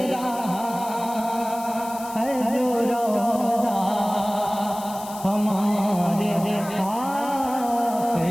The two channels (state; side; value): noise; left; hiss, 15 dB below the sound